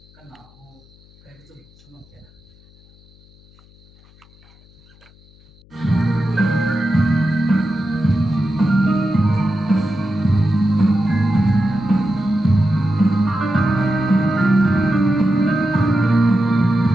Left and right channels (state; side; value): noise; left; hum, 28 dB below the sound